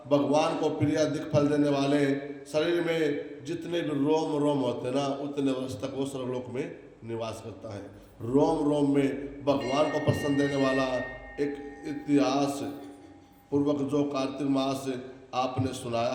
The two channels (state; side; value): identical; both; correlation 1.00